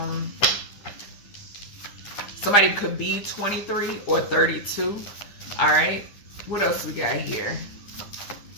Somebody could be 23 or 32. All right. What else we got here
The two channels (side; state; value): right; late; 9.8 ms